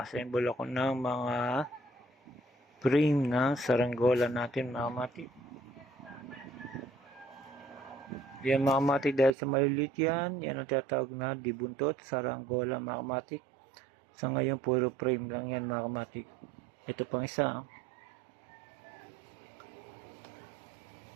ako ng mga frame ng saranggola natin mga kamatik. Yan mga kamatik, dahil sa maliliit yan ang tinatawag na dibuntot, saranggola mga kamatik. Sa ngayon, puro frame lang yan mga kamatik. Ito pang isa.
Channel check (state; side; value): drops out; left; at 9.3 s